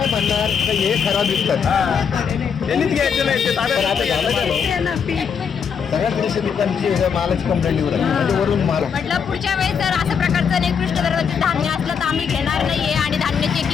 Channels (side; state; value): right; quieter; 6.8 dB